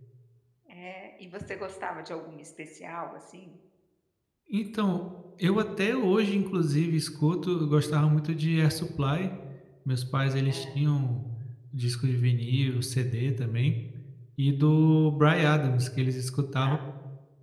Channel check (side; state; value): both; identical; correlation 1.00